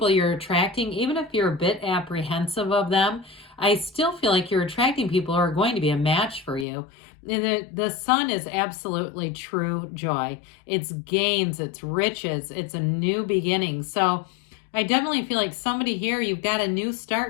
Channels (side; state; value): right; drops out; at 6.7 s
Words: you're attracting, even if you're a bit apprehensive of them, I still feel like you're attracting people who are going to be a match for you. And the Sun is absolutely true joy. It's gains, it's riches, it's a new beginning. So I definitely feel like somebody here, you've got a new